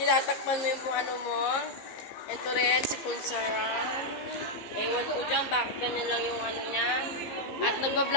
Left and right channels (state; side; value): late; right; 15 ms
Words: mo yung ano mo. Ito rin, si Punsaran. Ewan ko dyan, bakit ganyan lang yung ano niya. At